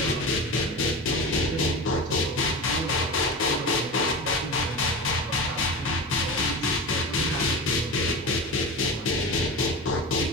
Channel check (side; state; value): both; normal; correlation 0.27